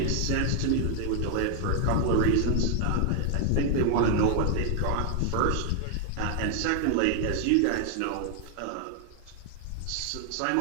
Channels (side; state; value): both; different; correlation 0.00